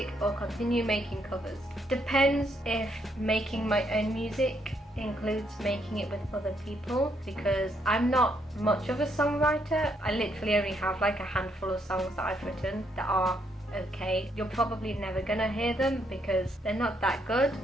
or continue making covers? Depends if making my own music includes making it with other people, because I'm not much of a songwriter. I literally only have like a handful of songs that I've written that are okay. You're probably never gonna hear them because they're not that good.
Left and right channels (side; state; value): both; normal; correlation 0.74